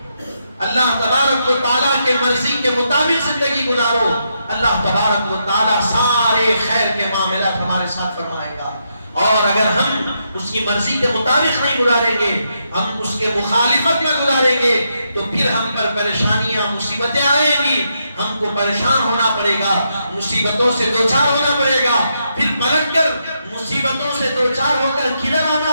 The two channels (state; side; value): inverted; both; correlation -0.81